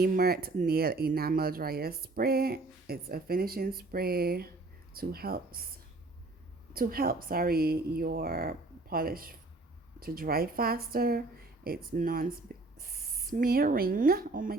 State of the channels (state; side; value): quieter; left; 3.1 dB